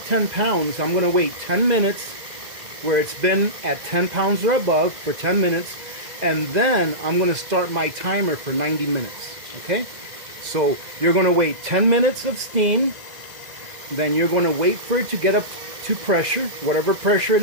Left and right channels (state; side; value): late; left; 2.0 ms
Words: 10 pounds, I'm going to wait 10 minutes where it's been at 10 pounds or above for 10 minutes. And then I'm going to start my timer for 90 minutes. Okay? So you're going to wait 10 minutes of steam. Then you're going to wait for it to get up to pressure, whatever pressure it